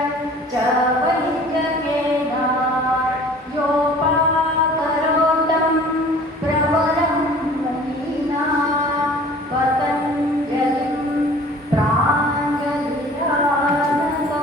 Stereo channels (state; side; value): normal; both; correlation 0.47